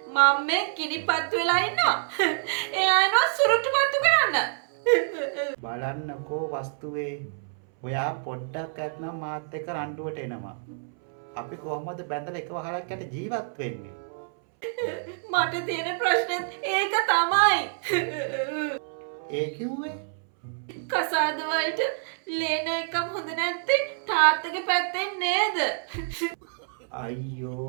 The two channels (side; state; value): left; silent; 60 dB below the other